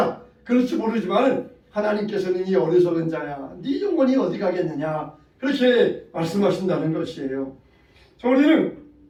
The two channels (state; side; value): identical; both; correlation 1.00